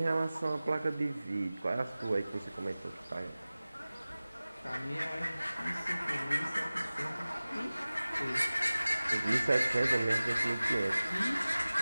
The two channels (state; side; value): inverted; both; correlation -0.98